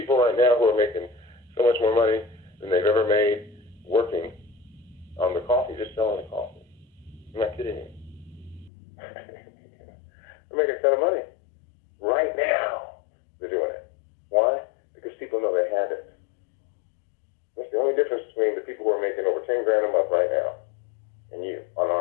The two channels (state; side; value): drops out; right; at 8.7 s